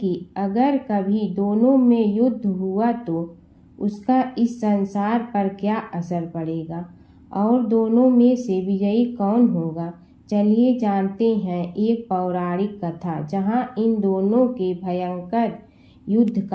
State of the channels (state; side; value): identical; both; correlation 1.00